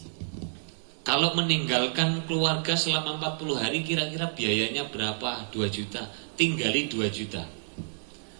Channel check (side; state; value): left; silent; digital silence